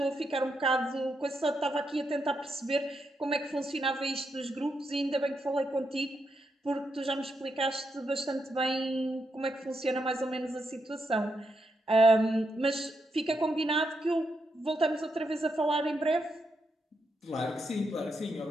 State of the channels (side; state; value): both; normal; correlation 0.82